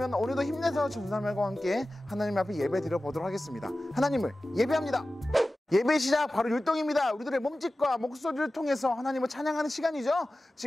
오늘도 힘내서 전사님과 함께 하나님 앞에 예배 드려보도록 하겠습니다. 하나님을 예배합니다. 예배 시작 바로 율동입니다. 우리들의 몸짓과 목소리를 통해서 하나님을 찬양하는 시간이죠.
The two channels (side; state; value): both; normal; correlation 0.95